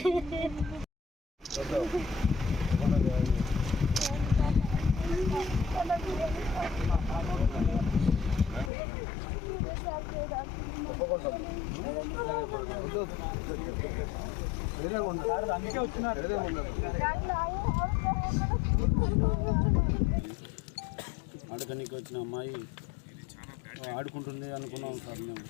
అందుకే వచ్చినారు. ఆడుకోనికి వచ్చిన అమ్మాయి ఆడుకుంటుంది అనుకున్నాం సార్. మేము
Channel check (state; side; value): drops out; right; at 8.7 s